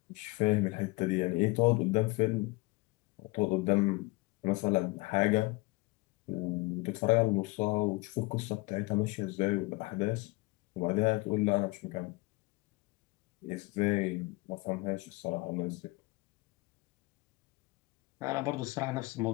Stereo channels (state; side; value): quieter; right; 23.8 dB